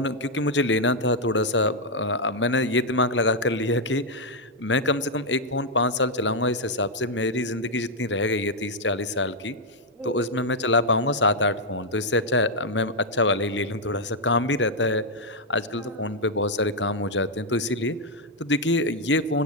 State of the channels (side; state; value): both; normal; correlation -0.01